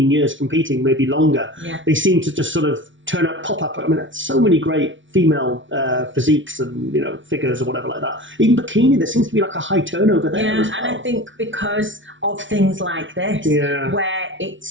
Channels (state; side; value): late; left; 0.56 ms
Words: years competing, maybe longer. Yeah. They seem to just sort of pop up. I mean, that's so many great female physiques and figures or whatever like that. Even bikini, there seems to be like a high turnover there as well. And I think because of things like this, where